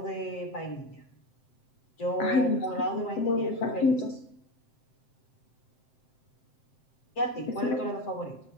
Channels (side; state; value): right; late; 7.7 ms